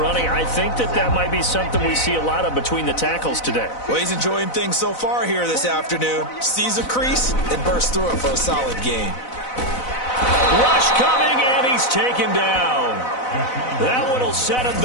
I think that might be something we see a lot of between the tackles today. Well, he's enjoying things so far here this afternoon. Sees a crease and bursts through it for a solid gain. Rush coming, and he's taken down. That one will set him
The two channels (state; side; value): late; right; 4.0 ms